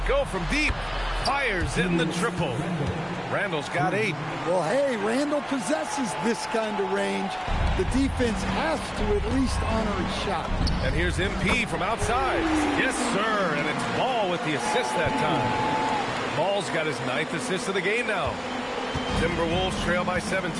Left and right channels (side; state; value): both; identical; correlation 1.00